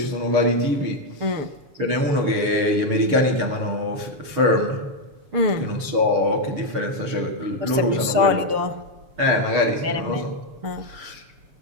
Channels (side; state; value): left; late; 7.1 ms